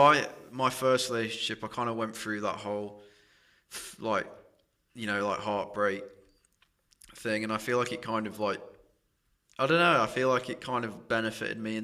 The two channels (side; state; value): both; identical; correlation 1.00